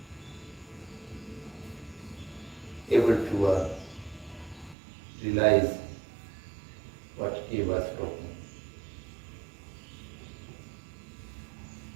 able to realize what he was talking.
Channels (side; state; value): left; drops out; at 4.8 s